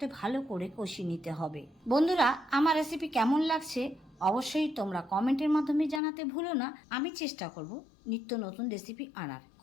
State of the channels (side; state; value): right; drops out; at 6.0 s